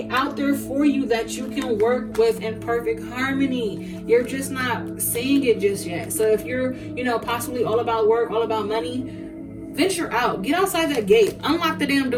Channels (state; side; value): identical; both; correlation 1.00